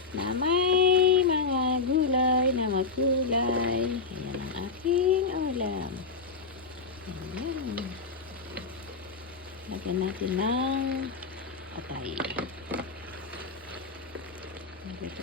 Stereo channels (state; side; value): quieter; right; 4.4 dB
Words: na may mga gulay na makulay. Ayan ang aking ulam. Ayan. Lagyan natin ng patay. Nagluto